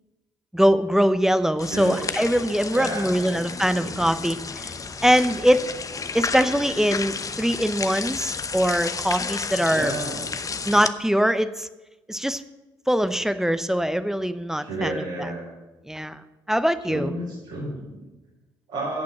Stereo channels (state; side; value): normal; both; correlation 0.88